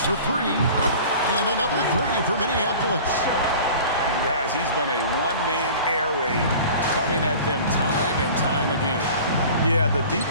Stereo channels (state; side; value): inverted; both; correlation -0.42